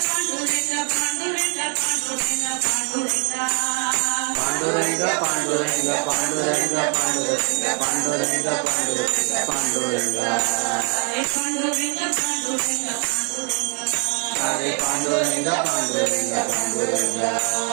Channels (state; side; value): quieter; left; 38.1 dB